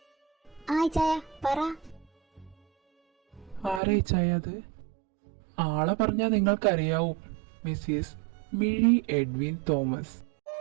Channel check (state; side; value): drops out; left; at 3.8 s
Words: ആ ഇച്ചായ പറ. ആരാ ചായ അത്? ആളെ പറഞ്ഞാൽ നിങ്ങൾക്കറിയാവും, മിസ്സിസ് മിഴി എഡ്വിൻ തോമസ്.